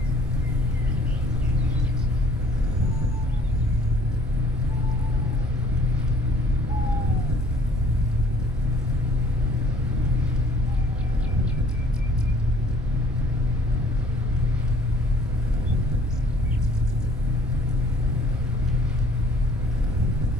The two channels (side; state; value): both; normal; correlation 0.56